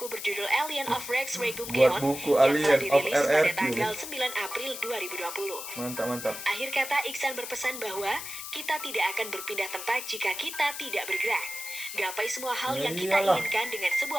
berjudul Alien of Rex Regum Geon yang telah dirilis pada tanggal 9 April 2020. Mantap. Akhir kata, Iksan berpesan bahwa kita tidak akan berpindah tempat jika kita tidak bergerak. Gapai semua hal yang kita inginkan dengan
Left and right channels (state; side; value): noise; left; hiss, 8 dB below the sound